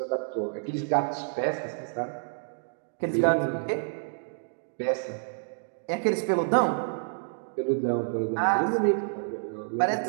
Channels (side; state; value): left; silent; digital silence